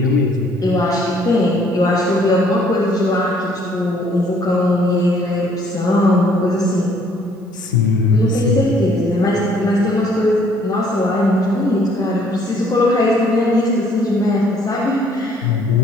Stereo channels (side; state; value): both; normal; correlation 0.62